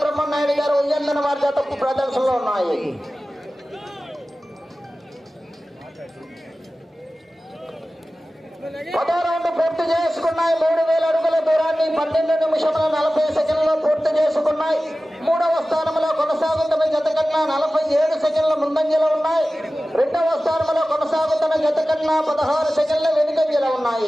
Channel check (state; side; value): normal; both; correlation 0.96